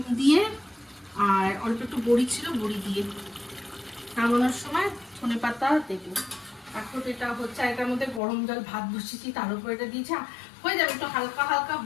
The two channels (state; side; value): drops out; right; at 8.2 s